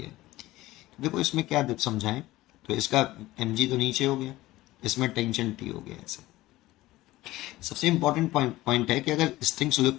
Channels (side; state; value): right; quieter; 17.4 dB